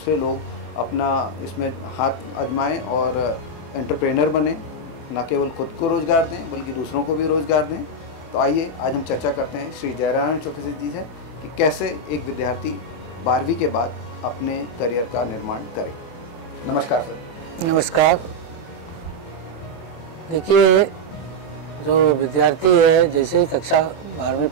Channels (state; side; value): late; right; 24 ms